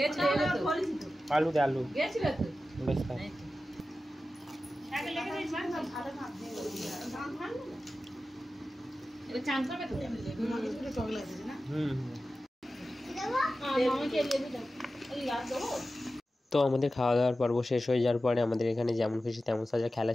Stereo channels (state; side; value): normal; both; correlation 0.94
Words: তো আলু দে, আলু গেছিল তো বেশ খা। আগে লেগে দিস ভালো ভাত দিয়ে দাম ভালো না এটা চান করবে তো একটু টক লাগছে না। মামাকে লেবু দাও, এই লাগ দাও। তো আমাদের খাওয়া দাওয়ার পর্ব শেষ হয়ে যাওয়ার পরে আমাদের এখানে যেমন খুশি তেমন সাজা খেলা